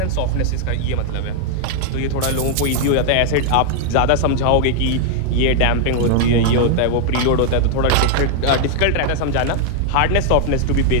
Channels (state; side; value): different; both; correlation 0.00